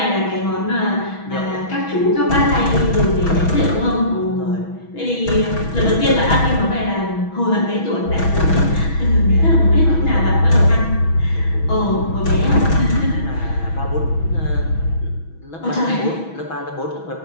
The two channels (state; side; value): late; right; 6.2 ms